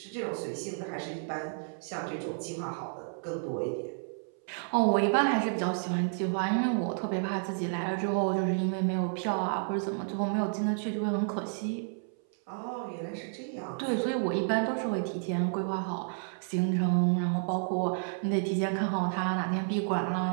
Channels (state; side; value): silent; left; 57 dB below the other